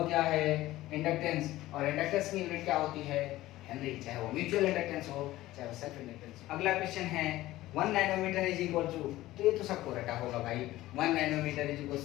क्या है, इंडक्टेंस, और इंडक्टेंस की यूनिट क्या होती है, हेनरी, चाहे वो म्यूचुअल इंडक्टेंस हो चाहे वो सेल्फ इंडक्टेंस। अगला क्वेश्चन है, 1 नैनोमीटर इज इक्वल टू, तो ये तो सबको रटा होगा भाई, 1 nanometre is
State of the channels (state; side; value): quieter; right; 16.4 dB